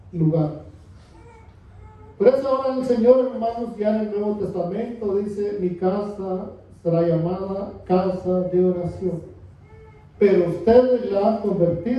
lugar. Por eso ahora el Señor, hermanos, ya en el Nuevo Testamento dice: mi casa será llamada casa de oración, pero ustedes la han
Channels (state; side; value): identical; both; correlation 1.00